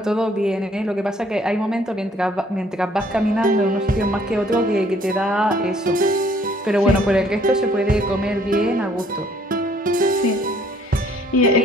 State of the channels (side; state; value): both; normal; correlation 0.62